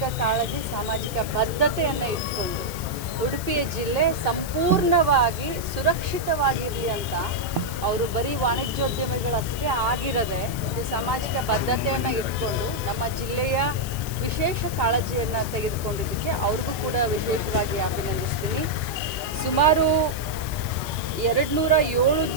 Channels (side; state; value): left; noise; hiss, 12 dB below the sound